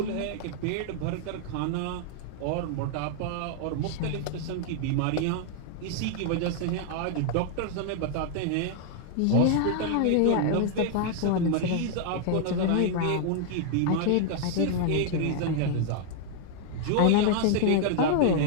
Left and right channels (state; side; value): different; both; correlation 0.00